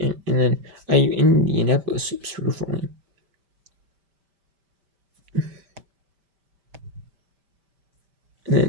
then IU Indianapolis sweeps Purdue Falling. And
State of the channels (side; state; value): left; late; 5.1 ms